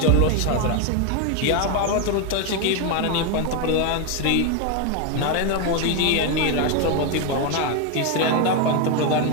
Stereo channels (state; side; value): different; both; correlation 0.02